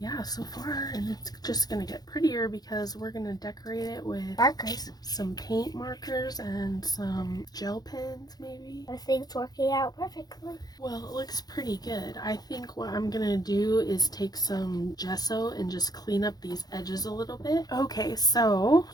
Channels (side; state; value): right; late; 0.19 ms